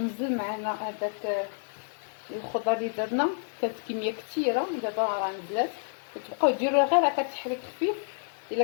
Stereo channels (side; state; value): right; silent; digital silence